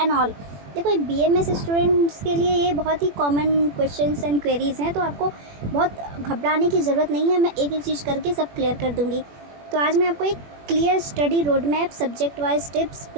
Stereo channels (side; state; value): left; late; 21 ms